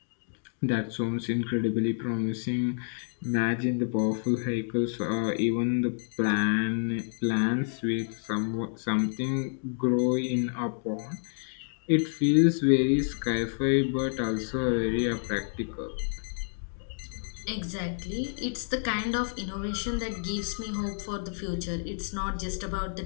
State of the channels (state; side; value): silent; right; digital silence